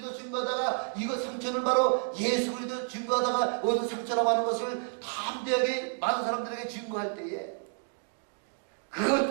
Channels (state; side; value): silent; left; 58 dB below the other